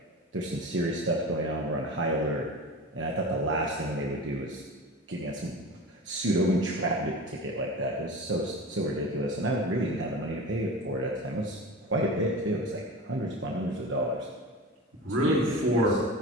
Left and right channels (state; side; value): normal; both; correlation 0.31